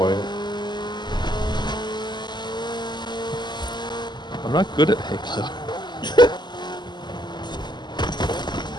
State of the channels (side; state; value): right; late; 0.21 ms